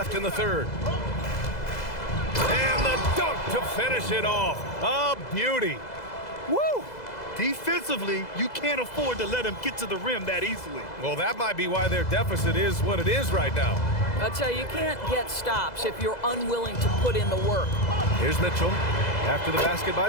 in the third. And the dunk to finish it off. A beauty. Woo! Defensively, you can't afford to let him get to the rim that easily. Well, that might be why their deficit is what it is right now. I'll tell you, you can't get stops if you're unwilling to put in the work. Here's Mitchell. After the basket by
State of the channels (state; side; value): late; right; 2.0 ms